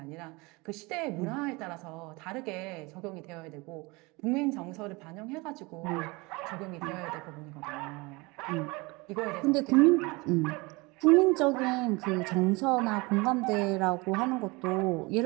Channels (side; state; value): left; quieter; 25.2 dB